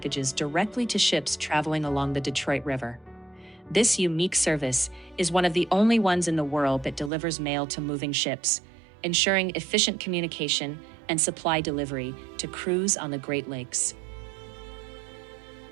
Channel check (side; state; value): left; drops out; at 7.1 s